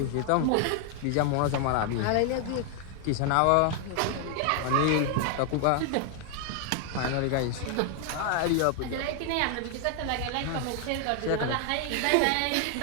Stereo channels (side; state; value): both; different; correlation 0.00